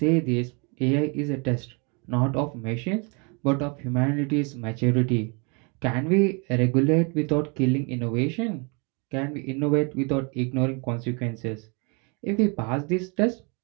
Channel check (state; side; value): quieter; left; 32.9 dB